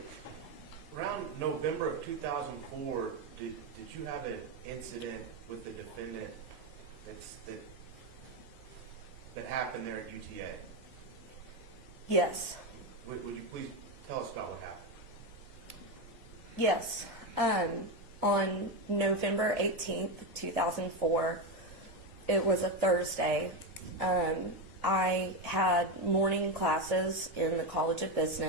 Around November of 2004, did you have an incident with the defendant that happened there at UTA? Yes. Would you please tell us about what happened? Yes. On November 18th, 2004, it was a Thursday. I had morning classes in the College of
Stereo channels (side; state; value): both; normal; correlation 0.11